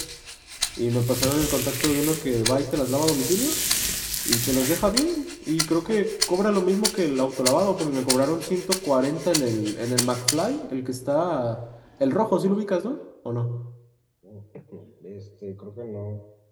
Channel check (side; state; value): both; identical; correlation 1.00